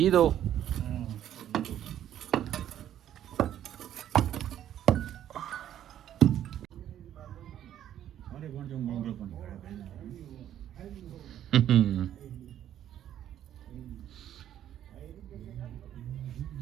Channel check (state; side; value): quieter; left; 11.0 dB